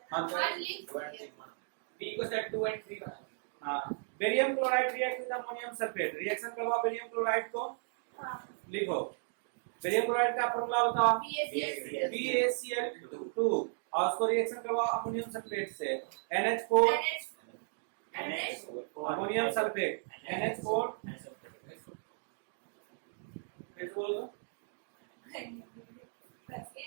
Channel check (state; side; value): silent; left; digital silence